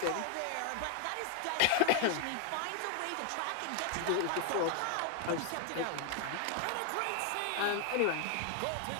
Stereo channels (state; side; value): different; both; correlation 0.00